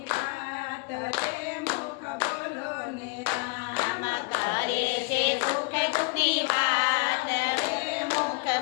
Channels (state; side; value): quieter; right; 30.3 dB